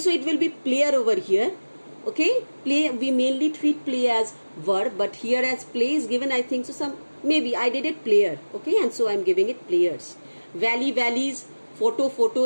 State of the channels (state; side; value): inverted; both; correlation -1.00